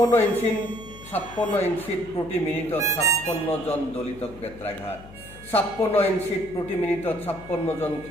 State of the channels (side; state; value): left; noise; hum, 18 dB below the sound